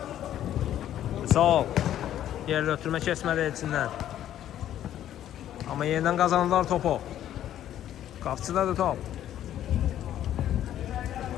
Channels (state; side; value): quieter; right; 11.6 dB